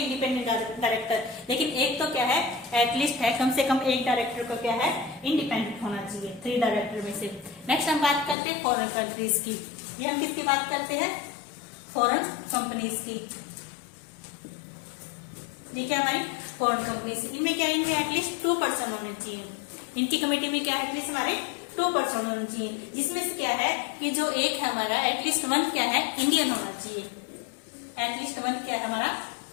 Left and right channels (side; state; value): right; drops out; at 8.3 s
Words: इंडिपेंडेंट डायरेक्टर, लेकिन एक तो क्या है एटलीस्ट है कम से कम एक डायरेक्टर को क्या है इंडिपेंडेंट होना चाहिए 3 डायरेक्टर में से। नेक्स्ट हम बात करते हैं फॉरेन कंट्रीज की। ये हम किसकी बात करते हैं फॉरेन कंपनीज की। ये क्या हमारी फॉरेन कंपनीज, इनमें क्या इनमें एटलीस्ट 2 पर्सन होने चाहिए। इनकी कमेटी में क्या एटलीस्ट हमारे 2 पर्सन होने चाहिए, जिसमें से क्या है कि जो एक है हमारा एटलीस्ट 1 क्या है इंडियन होना चाहिए। एटलीस्ट 1 क्या है हमारा